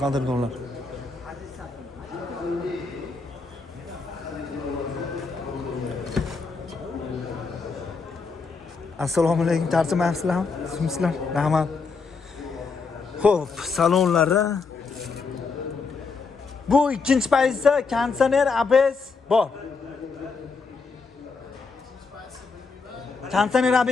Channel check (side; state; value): right; quieter; 4.6 dB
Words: qadrdonlar. Assalomu alaykum, tarjimayapsizlarmi? Sizlar, rahmat. Xo'p, salonlari. Bu ikkinchi pozitsiya konditsioner ABS bor. Konditsioner